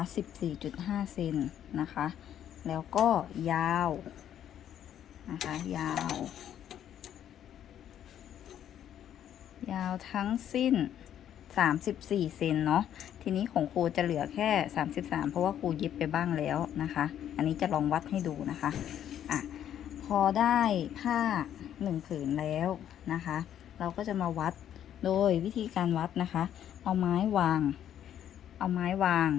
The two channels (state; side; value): quieter; right; 10.4 dB